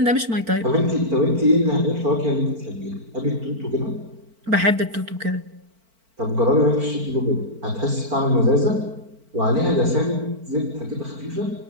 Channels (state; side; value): late; left; 4.4 ms